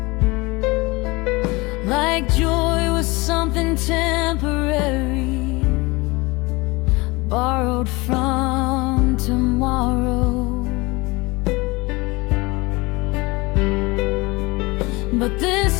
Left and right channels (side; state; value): right; quieter; 24.0 dB